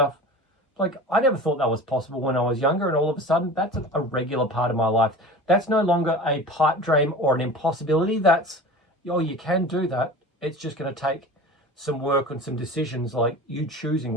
Like, I never thought that was possible when I was younger, and all of a sudden, that's a regular part of my life. That's no longer a pipe dream or an impossibility. That's, oh, you can do that. It's just going to take some work and some decisions, like you choosing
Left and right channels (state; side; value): normal; both; correlation 0.36